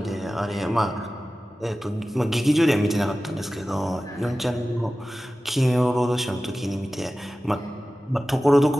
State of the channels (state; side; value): normal; both; correlation 0.96